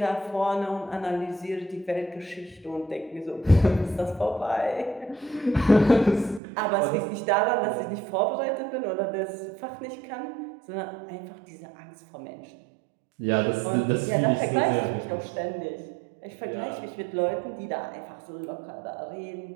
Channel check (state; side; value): drops out; left; at 6.4 s